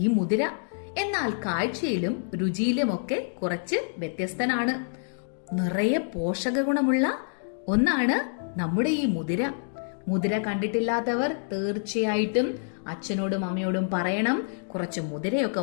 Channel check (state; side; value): silent; right; digital silence